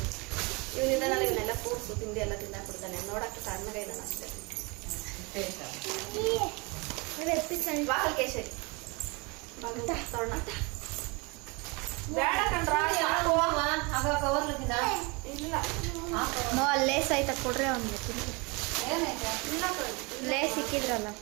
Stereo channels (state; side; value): quieter; left; 28.4 dB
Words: ಇವನಿದ್ದಾನಲ್ಲಿ ಇವನ್ನೆಲ್ಲ ಫ್ರೂಟ್ಸು ತಿಂಡಿ ಎಲ್ಲ ತಿಂದಾಕ್ಬಿಡ್ತಾನೆ. ನೋಡಕ್ಕೆ ಸಣ್ಣಗೆ ಇದ್ದಾನೆ ಅಷ್ಟೇ. ಬಾಗಲ್ ಕೇಸರಿ ಬಾಗಲ್ ತೋರಣ ಬೇಡ ಕಣ್ರ ಸಾಕು. ಇಲ್ಲ ನೋ ಅಲ್ಲಿ ಲೇಸ್ ಆಯ್ತಾ ಕೊಡ್ರಿ ಅವ್ನಿಗೆ ಇಲ್ಲ ಕಣೆ. ಲೇಸ್ ಸಿಕ್ಕಿದ್ರಲ್ಲ